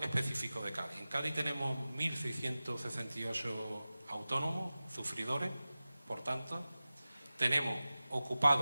específico de Cádiz. En Cádiz tenemos 1.668 autónomos, sufridores, por tanto, tenemos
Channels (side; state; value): both; inverted; correlation -0.96